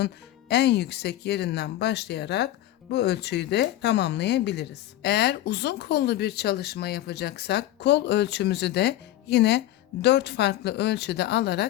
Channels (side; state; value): right; quieter; 14.1 dB